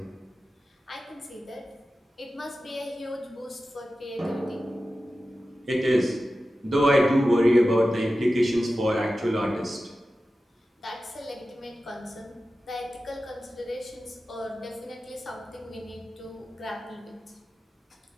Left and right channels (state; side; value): normal; both; correlation 0.94